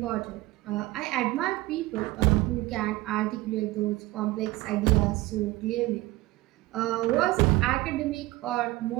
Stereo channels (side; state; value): left; quieter; 19.0 dB